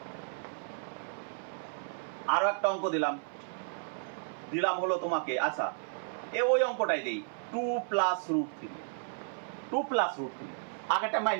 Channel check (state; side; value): silent; left; 56 dB below the other